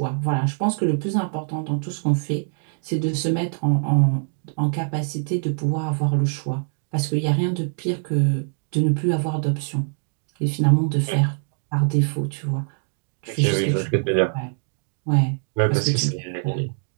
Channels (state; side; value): silent; left; 63 dB below the other